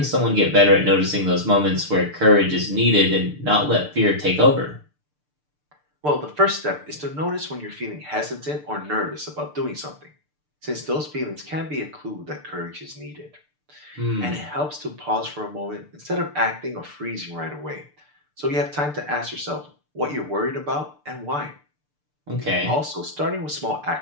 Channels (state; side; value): late; left; 6.7 ms